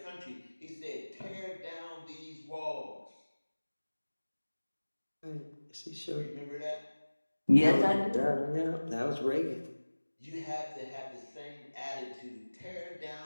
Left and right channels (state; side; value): inverted; both; correlation -1.00